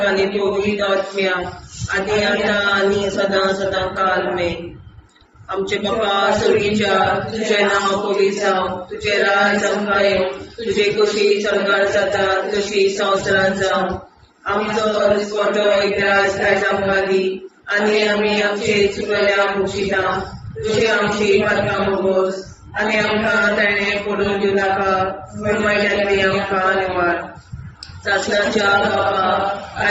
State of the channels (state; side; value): identical; both; correlation 1.00